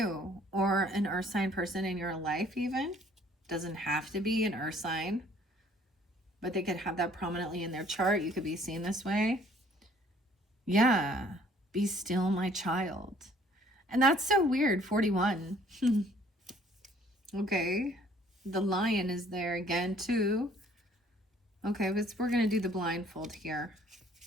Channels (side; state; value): both; normal; correlation 0.58